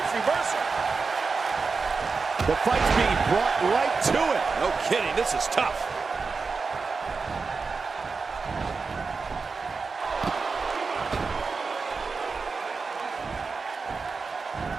reversal. The fight's being brought right to it. No kidding, this is tough.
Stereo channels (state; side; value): quieter; left; 4.6 dB